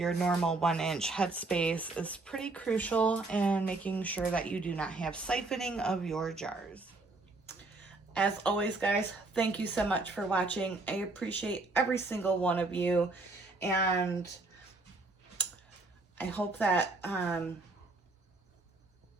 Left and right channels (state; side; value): quieter; left; 3.3 dB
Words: normal 1-inch headspace is pretty crucial in making sure that you do not have siphoning of your jars. As always, guys, thank you so much for watching. I appreciate every single one of you, and I hope that